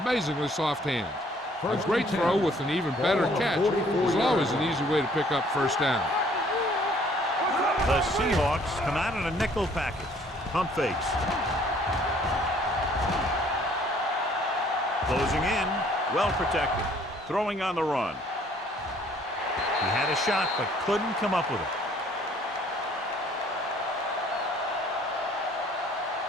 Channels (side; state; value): both; normal; correlation 0.59